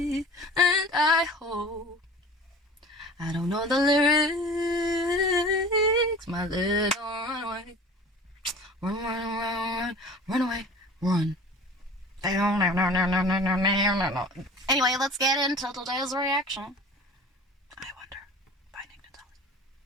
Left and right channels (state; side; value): normal; both; correlation 0.41